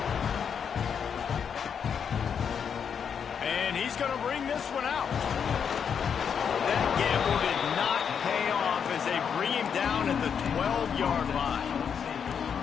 And he's going to bring this one out. That gamble did not pay off as they bring him down at the 12-yard line.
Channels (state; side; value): quieter; right; 7.2 dB